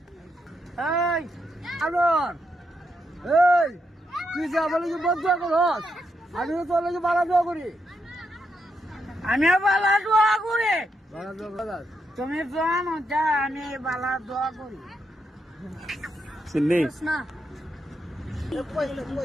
এই আলোর, এই তুই যা বলে কি বদুয়া করস? আমি তো তোর লাগে বালা দোয়া করি। আমিও বালা দোয়া করি। তুমি জানো যা আমি বালা দোয়া করি। চিন্নি না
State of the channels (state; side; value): normal; both; correlation 0.81